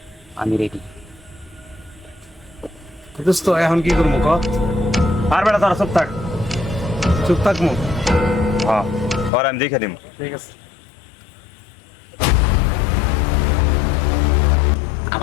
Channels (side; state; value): right; drops out; at 9.3 s